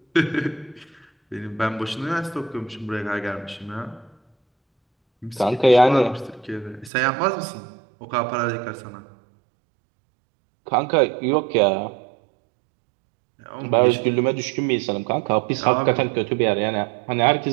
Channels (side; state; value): left; drops out; at 6.9 s